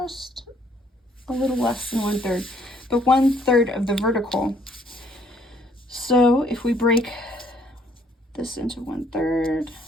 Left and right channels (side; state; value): both; normal; correlation 0.64